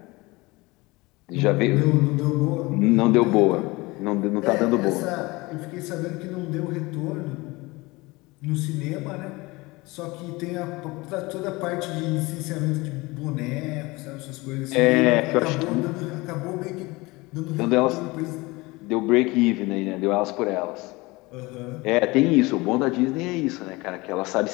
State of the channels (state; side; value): quieter; right; 22.9 dB